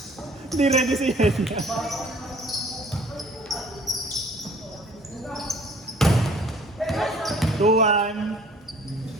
Hindi ready si Yenya. 2-1.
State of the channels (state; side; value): normal; both; correlation 0.53